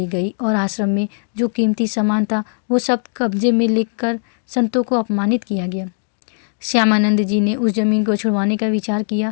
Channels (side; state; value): right; silent; digital silence